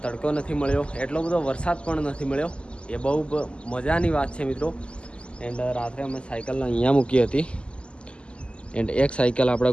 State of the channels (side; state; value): right; late; 0.053 ms